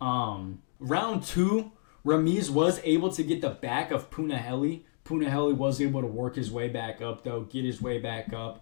2, Ramiz was able to get the back of Punahele. Punahele was able to work his way back up, though, get his way back up.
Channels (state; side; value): silent; right; digital silence